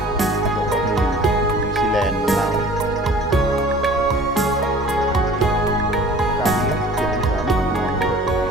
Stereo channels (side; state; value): both; normal; correlation 0.47